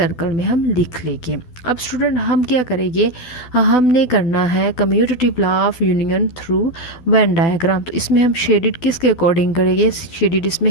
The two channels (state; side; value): late; right; 12 ms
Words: में हम लिख लेंगे। अब स्टूडेंट हम क्या करेंगे, हमने करना है commutative law of union through when diagram. तो इसमें हम शेडिड किसके अकॉर्डिंग करेंगे, शेडिड इसमें